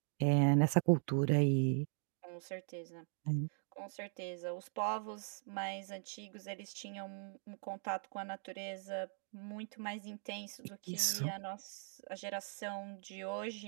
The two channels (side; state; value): left; silent; 51 dB below the other